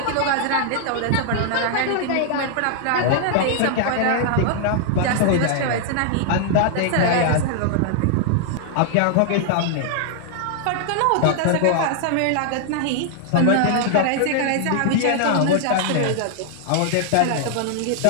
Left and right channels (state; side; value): different; both; correlation -0.01